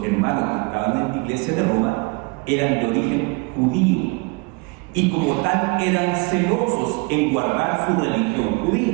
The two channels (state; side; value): quieter; left; 29.5 dB